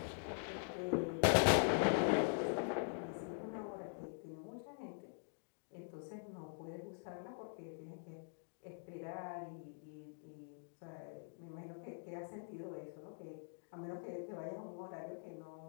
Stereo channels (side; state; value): right; silent; digital silence